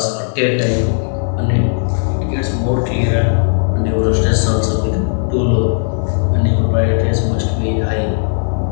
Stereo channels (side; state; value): right; silent; 60 dB below the other